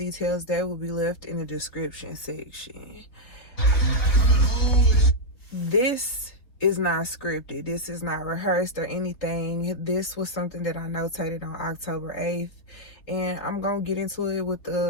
that will be left in the description section. This is not scripted. This is not rehearsed or anything. This was something that I notated on October 8th. And I'm going to get into it with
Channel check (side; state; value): right; late; 4.1 ms